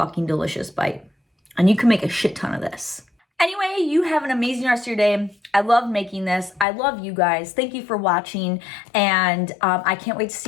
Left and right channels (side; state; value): right; drops out; at 6.7 s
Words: delicious bite. And you can make a shit ton of this. Anyway, you have an amazing rest of your day. I love making this. I love you guys. Thank you for watching. And I can't wait to